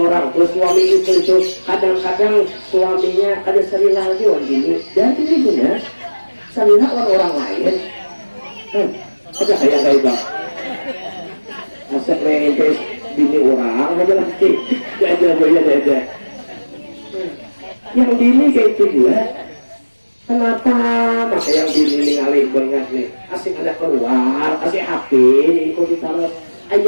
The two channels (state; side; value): inverted; both; correlation -1.00